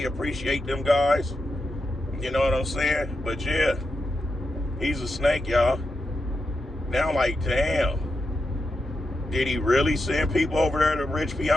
appreciate them guys. You know what I'm saying? But yeah, he's a snake, y'all. Now I'm like, damn. Did he really send people over there to Rich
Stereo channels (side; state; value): both; normal; correlation 0.87